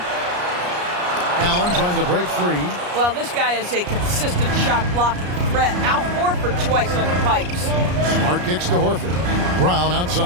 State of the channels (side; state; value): left; late; 34 ms